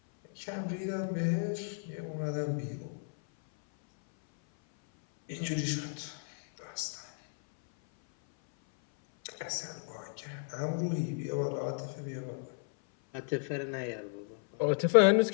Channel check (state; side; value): silent; right; 56 dB below the other